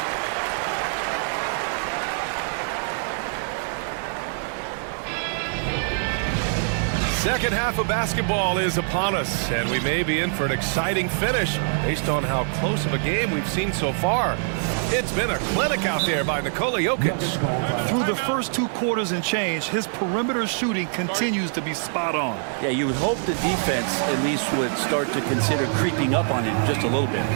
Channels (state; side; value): silent; left; digital silence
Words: Second half of basketball is upon us, and we may be in for an exciting finish based on how close of a game we've seen so far. It's been a clinic out there by Nikola Jokic. Through the first 2 quarters and change, his perimeter shooting continues to be spot on. Yeah, you would hope the defense at least would start to consider creeping up on him just a little bit.